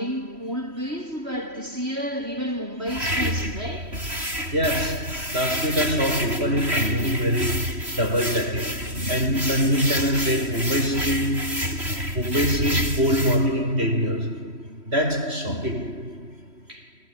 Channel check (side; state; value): left; late; 3.1 ms